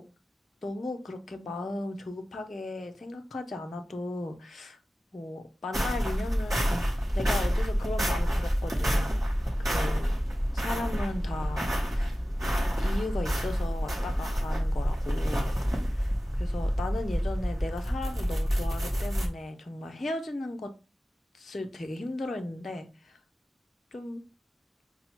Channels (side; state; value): both; normal; correlation 0.95